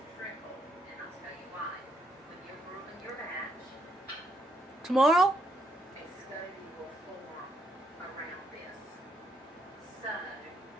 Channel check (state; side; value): normal; both; correlation 0.75